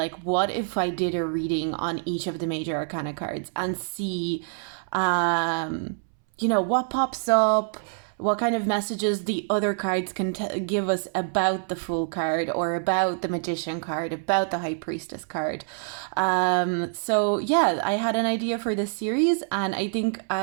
what if I did a reading on each of the major arcana cards and see, what pops up, what kind of messages the other cards can give us about the Fool card or about the Magician card, about the High Priestess card. So yeah, I had an idea for this series and I think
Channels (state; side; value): silent; left; 61 dB below the other